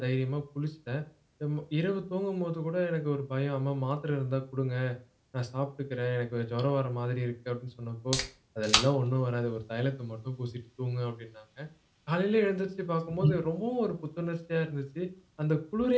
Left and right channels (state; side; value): identical; both; correlation 1.00